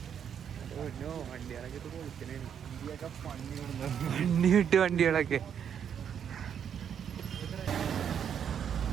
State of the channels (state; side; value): quieter; left; 8.3 dB